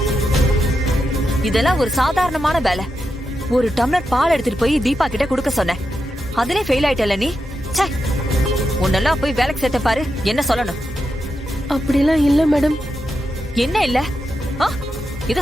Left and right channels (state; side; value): normal; both; correlation 0.87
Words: இதெல்லாம் ஒரு சாதாரணமான வேலை. ஒரு டம்ளர் பால் எடுத்துட்டு போய் தீபா கிட்ட குடுக்க சொன்னேன். அதிலே ஃபெயில் ஆயிட்டல நீ. ச்சே, உன்னெல்லாம் போய் வேலைக்கு சேர்த்த பாரு. என்ன சொல்லணும்? அப்படிலாம் இல்ல மேடம். என்ன இல்ல?